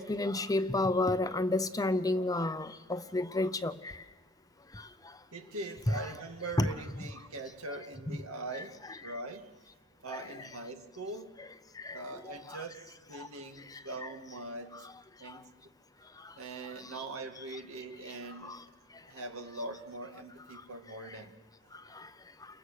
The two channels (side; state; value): both; normal; correlation 0.55